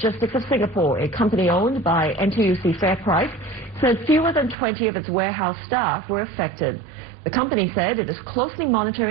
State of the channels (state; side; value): drops out; left; at 4.5 s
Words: of Singapore, a company owned by NTUC FairPrice, said fewer than 20 of its warehouse staff were affected. The company said it is closely